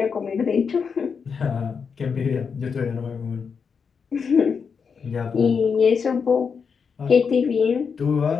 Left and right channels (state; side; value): quieter; right; 6.0 dB